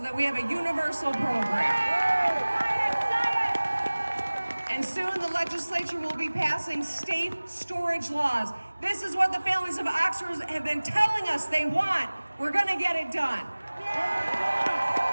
that we have a universal program. And soon the legislature will be passing safe storage laws. This is what the families of Oxford have been telling us they want. We're going to get it done.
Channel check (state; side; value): inverted; both; correlation -1.00